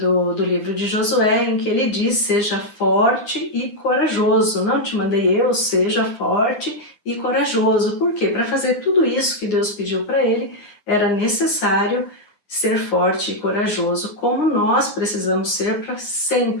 livro de Josué, em que ele diz: seja forte e corajoso. Não te mandei eu, seja forte e corajoso. Por quê? Para fazer tudo isso que Deus pediu para ele, era necessário ser forte e corajoso, como nós precisamos ser para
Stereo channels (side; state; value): right; late; 9.9 ms